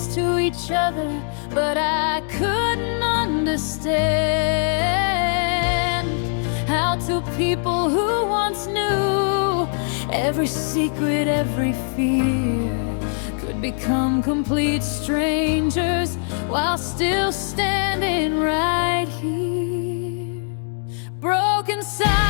to each other, but I couldn't understand how two people who once knew every secret, every fear, could become complete strangers while still standing right here. Broken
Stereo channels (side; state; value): right; silent; 61 dB below the other